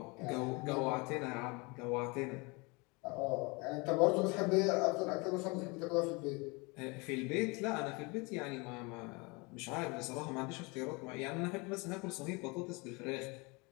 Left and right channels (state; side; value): quieter; right; 27.9 dB